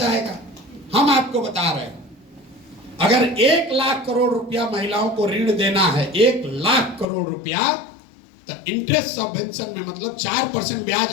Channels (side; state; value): right; drops out; at 7.1 s